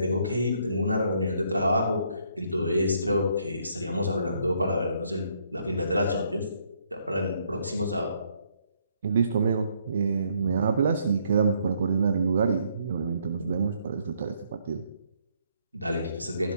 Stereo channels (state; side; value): inverted; both; correlation -0.70